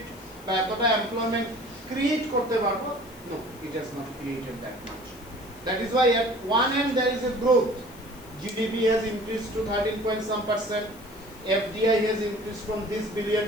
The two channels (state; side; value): noise; left; hiss, 23 dB below the sound